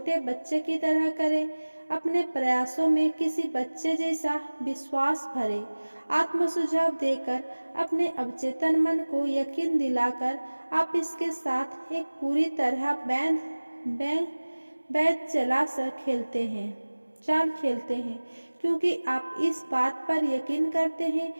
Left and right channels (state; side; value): inverted; both; correlation -1.00